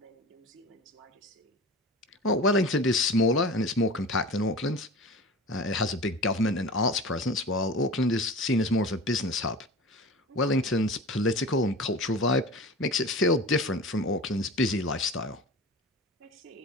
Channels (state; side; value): normal; both; correlation 0.35